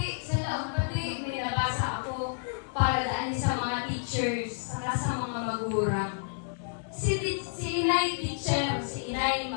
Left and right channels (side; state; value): right; silent; digital silence